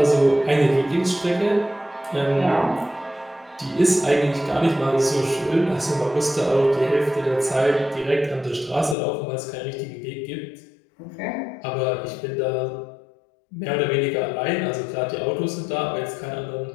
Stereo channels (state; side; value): drops out; right; at 9.0 s